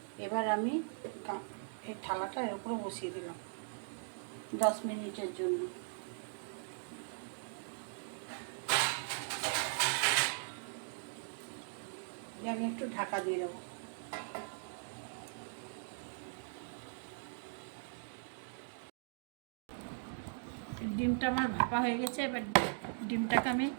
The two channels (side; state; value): left; silent; digital silence